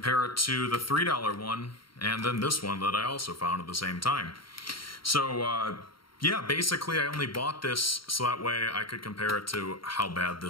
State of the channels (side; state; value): right; late; 0.73 ms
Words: it to the $3 one and then this one that I also found at the same time. So, yeah, basically I only bought this so that way I could compare it to how bad